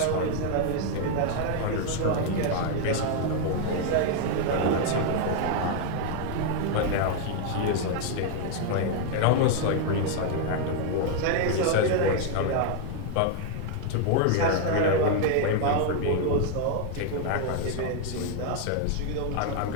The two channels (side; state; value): both; different; correlation 0.00